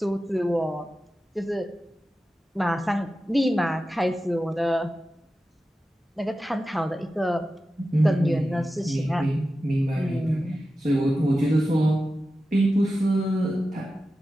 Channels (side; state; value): both; normal; correlation 0.93